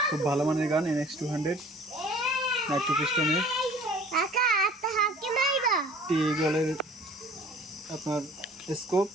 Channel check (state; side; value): normal; both; correlation 0.49